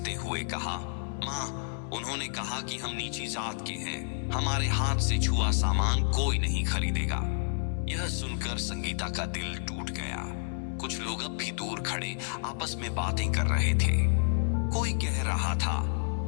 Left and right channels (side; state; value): right; silent; digital silence